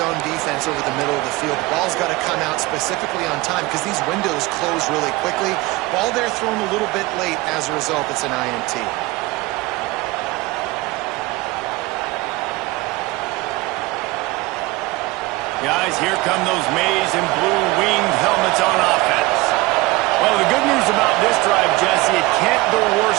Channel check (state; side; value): quieter; left; 21.1 dB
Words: zone defense over the middle of the field, the ball's got to come out specifically on time because these windows close really quickly. Ball there thrown a little bit late. As a result, it's an INT. Guys, here come those maize and blue winged helmets on offense. Well, the good news about this drive, Jesse, it can't go